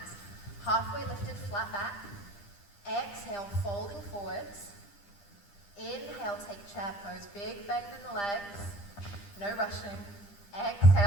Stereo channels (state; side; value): late; right; 10 ms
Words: Halfway lifted, flat back. Exhale, folding forwards. Inhale, take chair pose, big bend in the legs, no rushing.